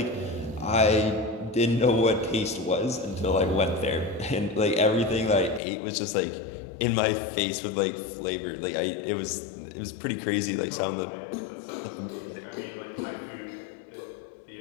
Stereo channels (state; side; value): drops out; right; at 5.6 s